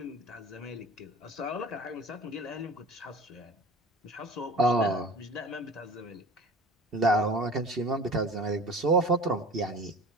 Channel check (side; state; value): both; normal; correlation 0.39